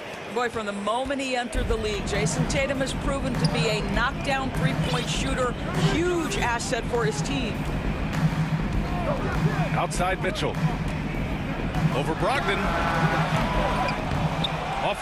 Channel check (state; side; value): identical; both; correlation 1.00